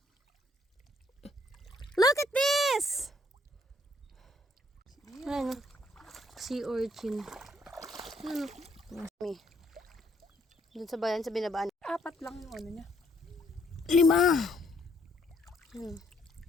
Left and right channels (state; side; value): normal; both; correlation 0.68